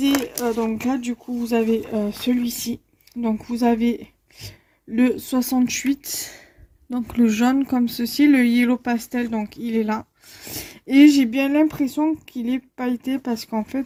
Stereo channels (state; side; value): identical; both; correlation 1.00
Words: donc là du coup vous avez celui-ci. Donc vous avez le 68, donc le jaune comme ceci, le yellow pastel, donc il est là. Et j'ai bien l'impression qu'il est pailleté parce qu'en fait,